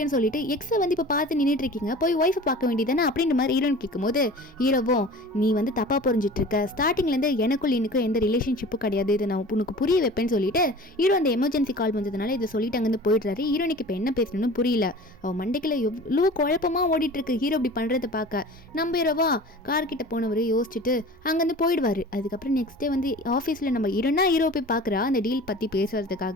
சொல்லிட்டு எக்ஸை வந்து இப்போ பார்த்து நின்றுட்டு இருக்கீங்க, போய் ஒய்ஃபை பார்க்க வேண்டியதானே அப்படின்ற மாதிரி ஹீரோன் கேட்கும்போது ஹீரோவும் நீ வந்து தப்பாக புரிஞ்சிட்டு இருக்க, ஸ்டார்டிங்லேருந்து எனக்குள் இன்னும் எந்த ரிலேஷன்ஷிப்பும் கிடையாது, இதை நான் உனக்கு புரிய வைப்பேன்னு சொல்லிட்டு ஹீரோ அந்த எமர்ஜென்சி கால் வந்ததுனால இதை சொல்லிட்டு அங்கேருந்து போயிடுறாரு. ஹீரோனுக்கு இப்போ என்ன பேசணும்னு புரியல, அவன் மண்டைக்குள்ள எவ்வளோ குழப்பமாக ஓடிட்டு இருக்கு ஹீரோ இப்படி பண்ணுறதை பார்க்க. நம்ம ஹீரோவா கார்கிட்ட போனவர் யோசிச்சுட்டு அங்கேருந்து போயிடுவார். அதுக்கப்புறம் நெக்ஸ்ட் டே வந்து ஆஃபீஸில் நம்ம ஹீரோ போய் பார்க்குறா அந்த டீல் பற்றி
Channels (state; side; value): normal; both; correlation 0.40